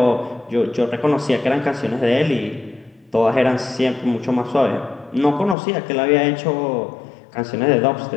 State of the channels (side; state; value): right; drops out; at 5.6 s